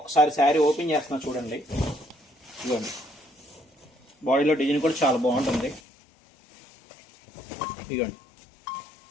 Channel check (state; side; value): drops out; right; at 5.8 s